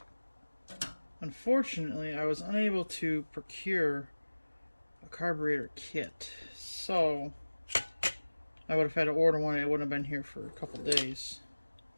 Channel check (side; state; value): both; inverted; correlation -1.00